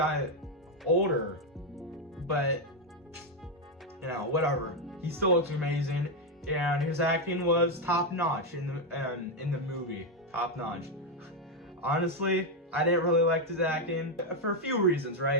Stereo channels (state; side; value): normal; both; correlation 0.04